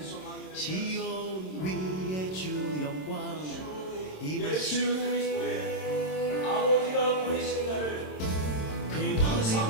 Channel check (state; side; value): late; right; 27 ms